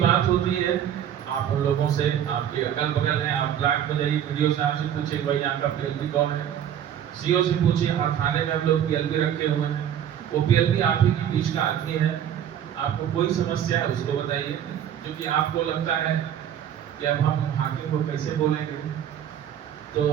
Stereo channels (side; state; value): left; quieter; 9.8 dB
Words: होती है आप उन लोगों से, आपके अगल बगल हैं, आप ब्लॉक में जाइए, वीडियो साहब से पूछिए भाई यहाँ का पीएलबी कौन है, सीओ से पूछिए, हर थाने में हम लोग पीएलबी रखे हुए हैं। वो पीएलबी आप ही के बीच का आदमी है। आपको कोई समस्या है उसको बताइए, जो कि आपको लगता है कि अब हम हाकिम को कैसे बोलेंगे, तो